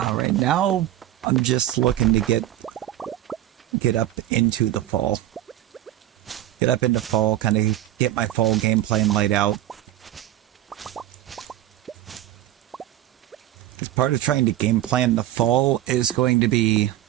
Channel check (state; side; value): quieter; left; 13.3 dB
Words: now I'm just looking to get up into the fall. Get up into fall, kind of get my fall game plan laid out. As part of trying to game plan the fall is going to be